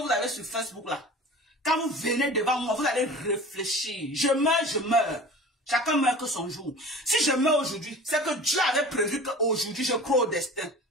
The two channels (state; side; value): normal; both; correlation 0.39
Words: avez sur Facebook là. Quand vous venez devant moi, vous allez réfléchir. Je meurs. Chacun meurt que son jour. Si je meurs aujourd'hui, c'est que Dieu avait prévu qu'aujourd'hui je crois au destin.